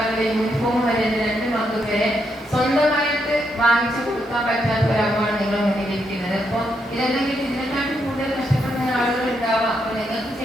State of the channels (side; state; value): both; normal; correlation 0.79